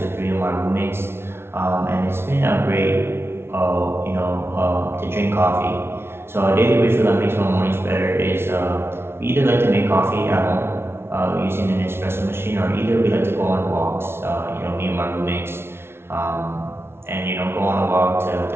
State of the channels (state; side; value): late; left; 0.12 ms